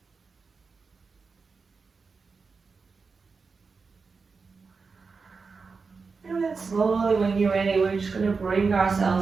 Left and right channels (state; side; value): quieter; left; 4.7 dB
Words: And then slowly, when you're ready, we're just going to bring